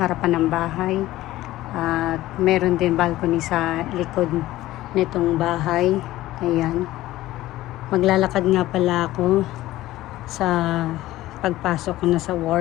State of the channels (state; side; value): quieter; right; 16.1 dB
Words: ng bahay. At meron din balcony sa likod nitong bahay. Ayan. Maglalakad nga pala ako sa pagpasok ko na sa